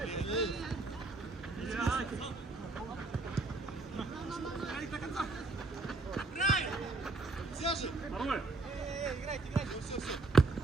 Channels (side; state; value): left; quieter; 3.4 dB